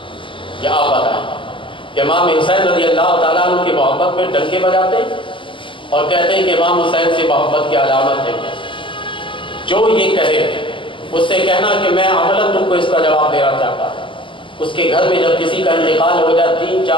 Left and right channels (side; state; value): right; late; 0.25 ms